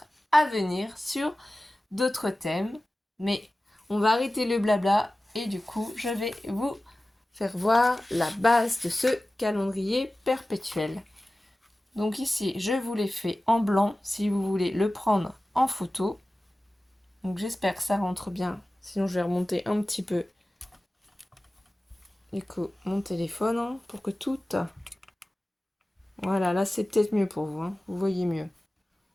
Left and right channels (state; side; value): normal; both; correlation 0.96